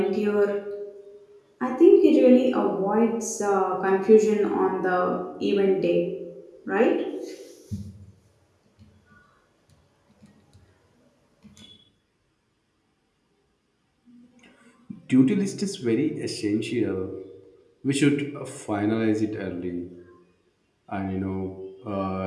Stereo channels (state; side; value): identical; both; correlation 1.00